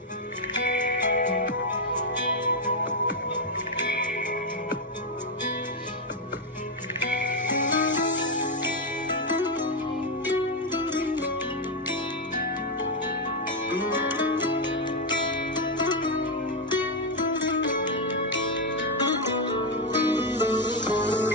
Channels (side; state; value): both; normal; correlation 0.04